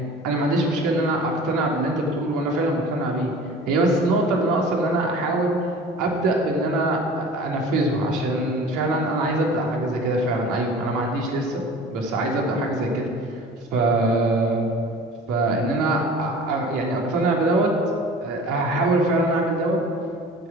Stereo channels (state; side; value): normal; both; correlation 0.42